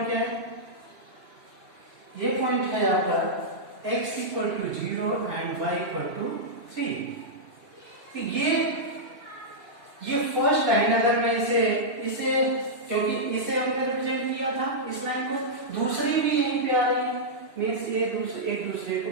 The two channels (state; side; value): late; left; 2.8 ms